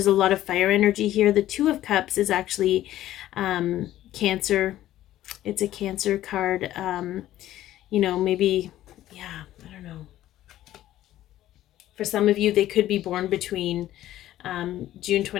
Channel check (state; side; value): quieter; right; 13.7 dB